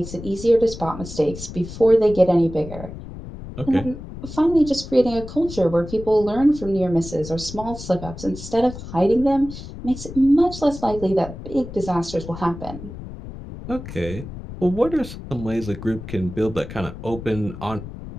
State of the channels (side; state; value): left; noise; rumble, 12 dB below the sound